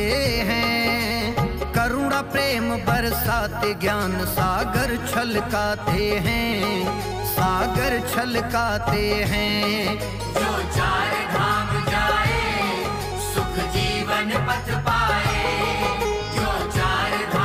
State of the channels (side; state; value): both; identical; correlation 1.00